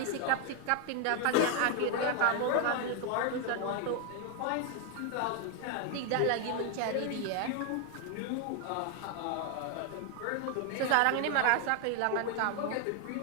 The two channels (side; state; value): both; different; correlation 0.01